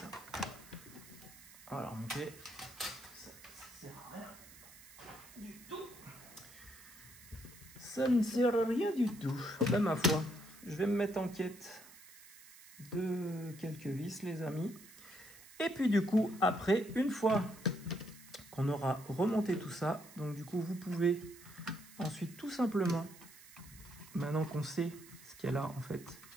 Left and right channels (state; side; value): noise; right; hiss, 19 dB below the sound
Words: On va la remonter. Ça ne sert à rien du tout. Ça ne sert à rien du tout. Ben, ma foi, je vais me mettre en quête de quelques vis, les amis. Et puis, du coup, après, une fois qu'on aura remonté tout ça, donc du coup vous pouvez ensuite tout simplement, maintenant qu'on sait ce qu'il y a là en fait,